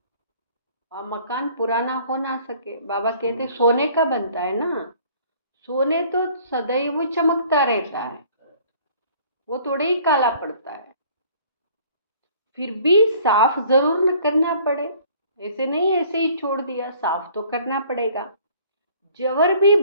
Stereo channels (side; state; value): both; inverted; correlation -0.55